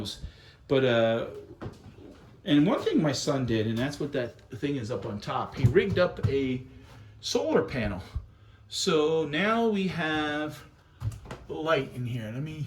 But and one thing my son did, and that's what that thing is up on top, he rigged up a solar panel. So now we have light in here.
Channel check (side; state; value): both; identical; correlation 1.00